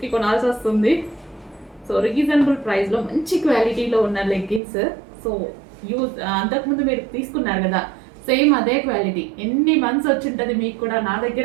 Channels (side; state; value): left; drops out; at 4.6 s